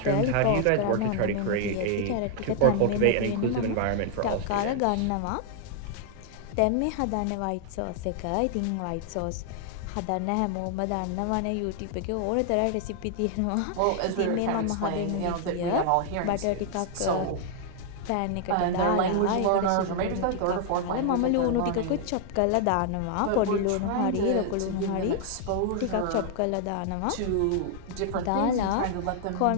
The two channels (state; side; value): different; both; correlation 0.00